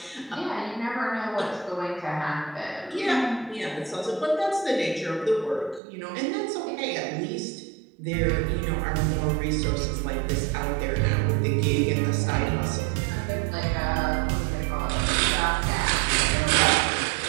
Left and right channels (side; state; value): left; drops out; at 5.8 s